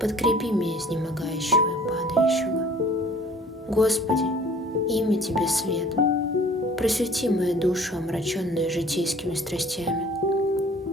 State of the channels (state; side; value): normal; both; correlation 0.51